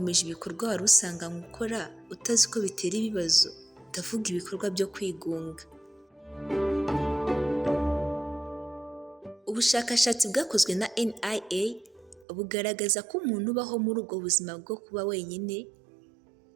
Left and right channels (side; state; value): left; drops out; at 12.2 s